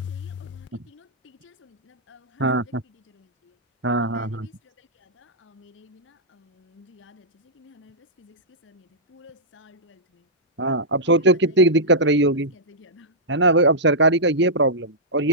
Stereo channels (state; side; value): normal; both; correlation -0.12